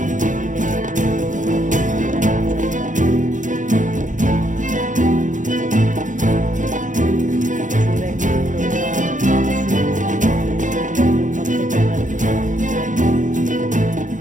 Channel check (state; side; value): late; left; 0.37 ms